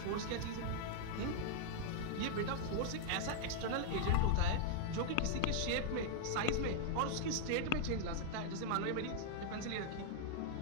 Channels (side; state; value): both; different; correlation -0.01